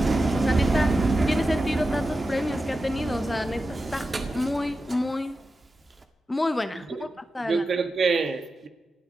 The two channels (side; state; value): both; normal; correlation 0.92